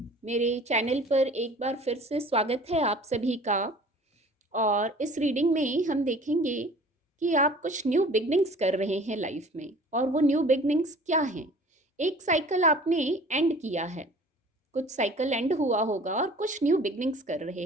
मेरे चैनल पर एक बार फिर से स्वागत है आप सभी का। और इस रीडिंग में हम देखेंगे कि आप कुछ न्यू बिगनिंग्स कर रहे हैं लाइफ में, और वो न्यू बिगनिंग्स क्या हैं। एक साइकिल आपने एंड किया है, कुछ साइकिल एंड हुआ होगा और कुछ न्यू बिगनिंग्स कर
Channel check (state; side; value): normal; both; correlation 0.47